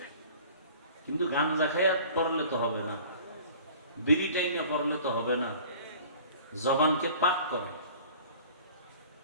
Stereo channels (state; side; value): inverted; both; correlation -0.46